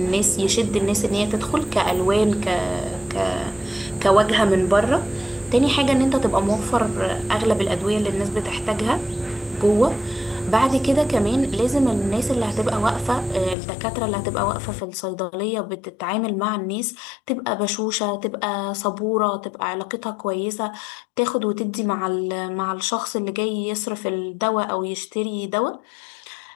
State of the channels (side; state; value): right; drops out; at 13.6 s